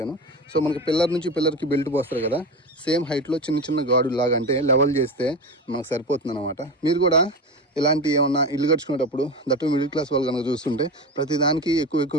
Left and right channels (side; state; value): both; normal; correlation 0.24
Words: సో మనకి పిల్లర్ నుంచి పిల్లర్కి బెల్ట్ పోస్తారు కదా, సేమ్ హైట్లో చిన్న చిన్న గాడు లాగా అంటే లెవెల్ చేస్తే మనకు సరిపోతుంది అనమాట. మీరు కూడా ఇలాంటి ఏమన్నా ఇల్లు కట్టుకునేటప్పుడు దట్టు మిడిల్ క్లాస్ వాళ్ళు కనుక చూస్తుంటే ప్రతి దానికి